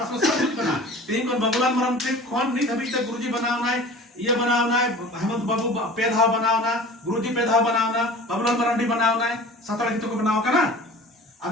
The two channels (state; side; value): normal; both; correlation 0.42